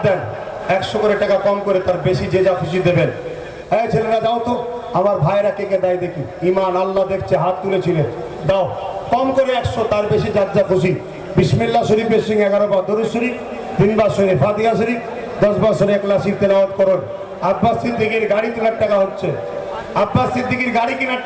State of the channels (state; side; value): identical; both; correlation 1.00